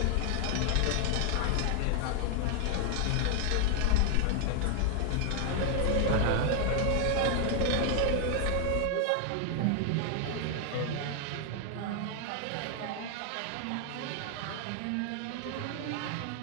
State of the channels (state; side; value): different; both; correlation 0.00